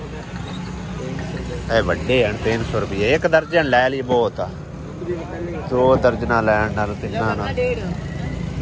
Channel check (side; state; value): both; identical; correlation 1.00